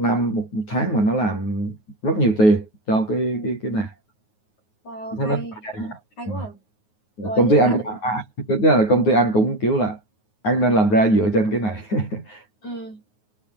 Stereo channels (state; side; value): late; right; 9.4 ms